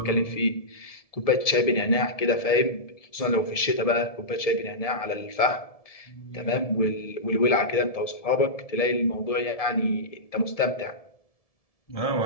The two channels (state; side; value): late; right; 1.7 ms